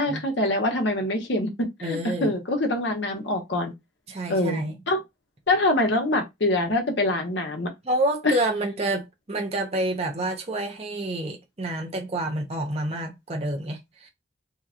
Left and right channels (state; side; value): normal; both; correlation 0.21